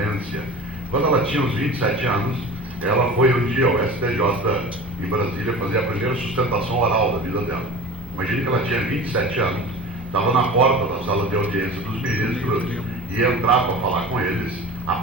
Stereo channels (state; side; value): normal; both; correlation 0.37